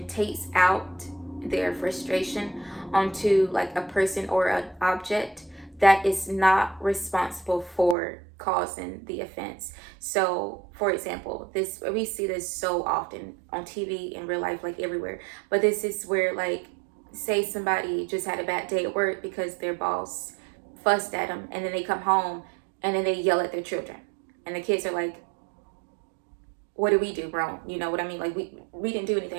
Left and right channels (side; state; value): left; drops out; at 8.0 s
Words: takes out their frustration onto like a person or an object that is not responsible for causing the offense. So for example, we see this so often on TV, in real life, like everywhere. But this is where, like, say somebody just had a bad day at work because their boss fussed at them, and then they come home and then they yell at their children, and the kids are like, what did we do wrong? You know what I mean? Like we didn't do